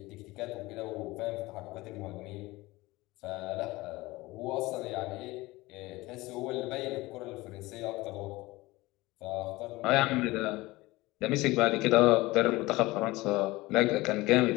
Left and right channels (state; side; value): quieter; right; 20.4 dB